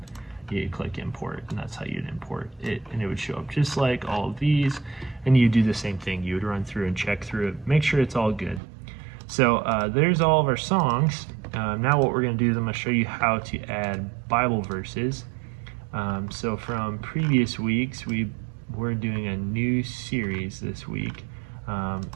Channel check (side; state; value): left; drops out; at 8.6 s